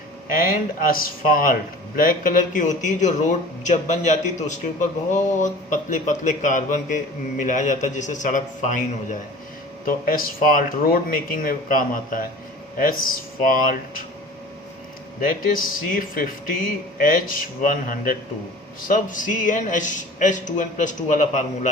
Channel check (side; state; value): both; normal; correlation 0.42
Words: And asphalt black colour की होती है, जो रोड जब बन जाती है तो उसके ऊपर बहुत पतले पतले कार्बन के मिलाया जाता है जिससे सड़क फाइन हो जाए. तो एसफाल्ट रोड मेकिंग में काम आता है. Asphalt that is C50H102. सब CnH2n+2 वाला